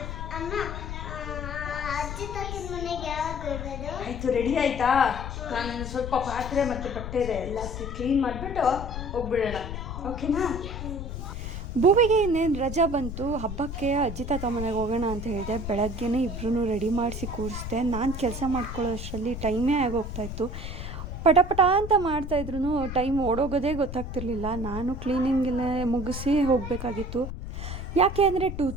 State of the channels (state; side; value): noise; left; rumble, 7 dB below the sound